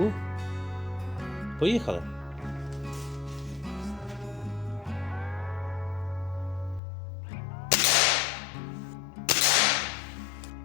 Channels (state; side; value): drops out; right; at 6.8 s